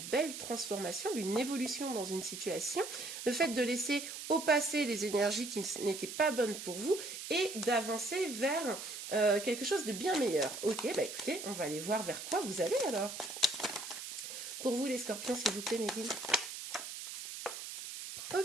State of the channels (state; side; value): noise; right; hiss, 8 dB below the sound